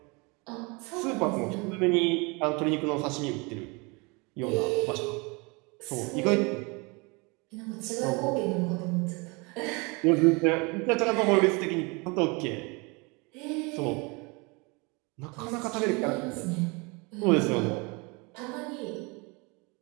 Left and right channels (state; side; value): quieter; left; 28.6 dB